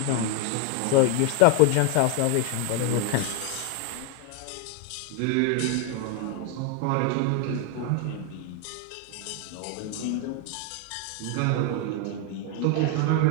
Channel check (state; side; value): different; both; correlation 0.01